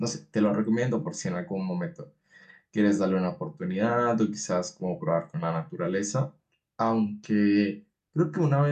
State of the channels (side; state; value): both; identical; correlation 1.00